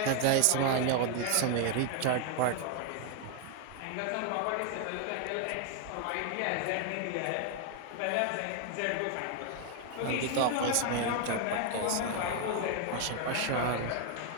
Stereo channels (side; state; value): both; different; correlation 0.00